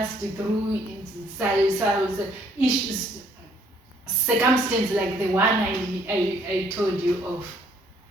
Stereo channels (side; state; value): both; normal; correlation 0.64